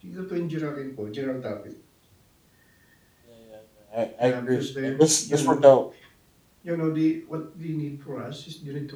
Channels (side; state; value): both; identical; correlation 1.00